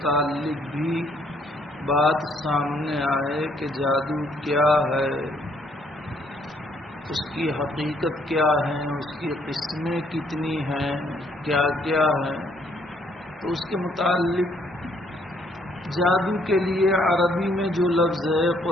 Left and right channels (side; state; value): both; normal; correlation 0.67